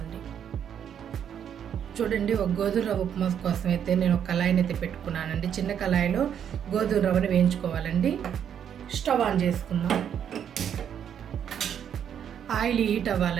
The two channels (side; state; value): left; quieter; 8.8 dB